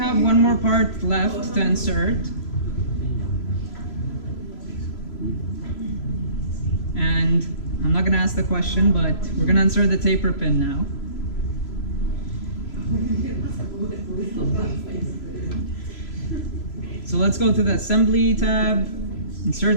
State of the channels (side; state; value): right; late; 3.0 ms